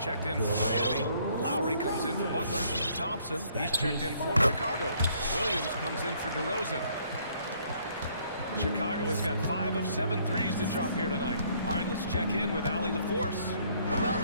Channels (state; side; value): inverted; both; correlation -0.64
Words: in for Miami. Lowry comes in for Butler. Thompson, he's checked in for Chicago. Williams comes in for DeRozan. Chicago has got 5 of 7 threes to drop here tonight. All right, let's check in with Allie LaForce. Well,